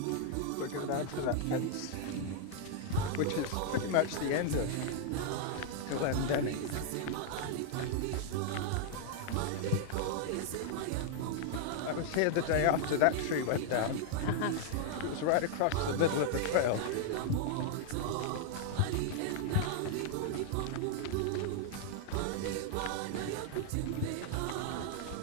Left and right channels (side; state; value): both; different; correlation 0.00